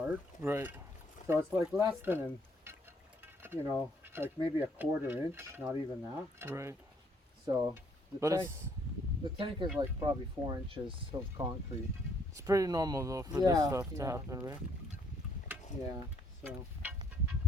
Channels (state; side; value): normal; both; correlation 0.67